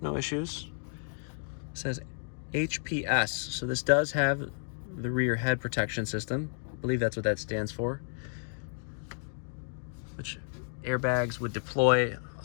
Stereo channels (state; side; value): silent; right; digital silence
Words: no issues. It says HPS, so this does have the rear head protection system. I believe that's what that stands for. Which airbags would deploy